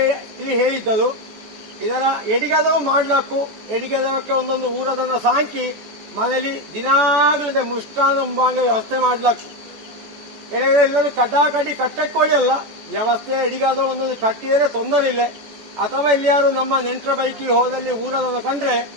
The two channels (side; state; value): left; late; 14 ms